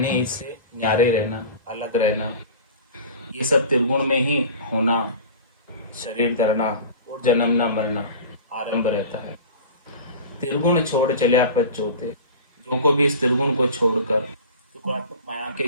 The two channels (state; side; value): inverted; both; correlation -0.36